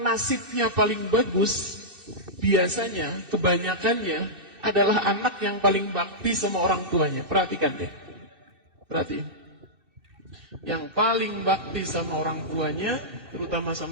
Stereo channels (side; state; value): left; late; 2.6 ms